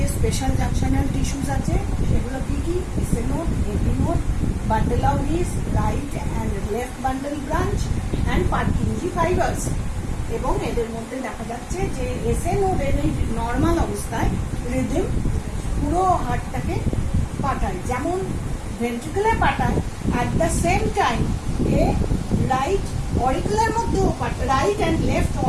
স্পেশাল জাংশনাল টিস্যুস আছে সেগুলো কি কি, SA node, AP node, bundle of His, right and left bundle branch and Purkinje fibres. এবং এদের মধ্যে দেখা যাচ্ছে যে এসএ নোডের এই নর্মাল অবস্থায় রিদম পুরো হার্টটাকে পাঠায়, যেমন ভেন্ট্রিকুলে পাঠায়, at the same time A right auricular মধ্যেও পাঠায়, রাইট অ্যান্ড লেফট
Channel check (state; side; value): identical; both; correlation 1.00